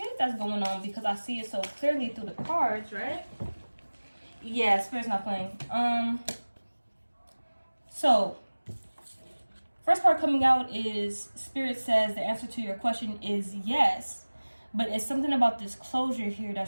that's going on, because I see it so clearly through the cards, right? Yeah, Spirit's not playing. So first part coming out is Spirit says the answer to your question is yes, but it's something about this closure here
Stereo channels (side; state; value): both; inverted; correlation -1.00